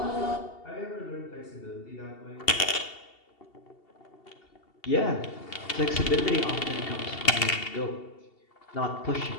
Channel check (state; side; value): late; right; 2.7 ms